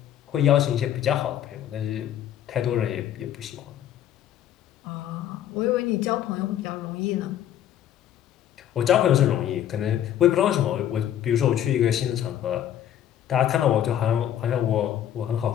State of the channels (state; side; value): quieter; right; 10.9 dB